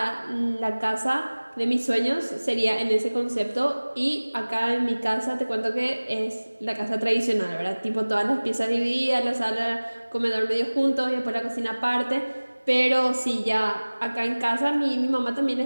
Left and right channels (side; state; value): both; inverted; correlation -1.00